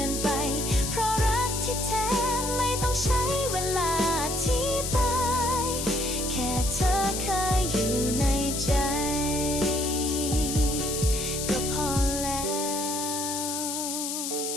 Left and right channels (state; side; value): noise; left; hiss, 3 dB below the sound